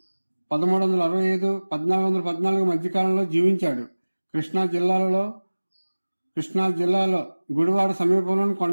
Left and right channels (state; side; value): inverted; both; correlation -1.00